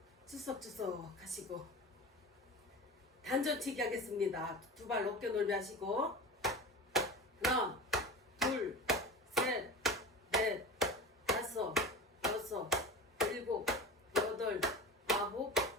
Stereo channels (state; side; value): normal; both; correlation 0.31